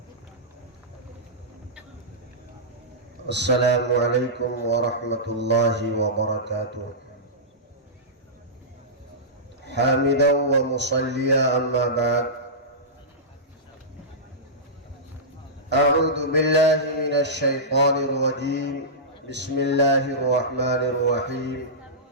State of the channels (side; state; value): both; normal; correlation -0.16